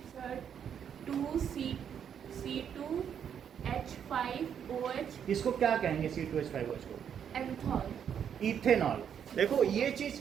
सर 2C2H5OH इसको क्या कहेंगे, C2H5OH को एंथॉल। इथेनॉल। देखो ये चीज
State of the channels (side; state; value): left; quieter; 8.3 dB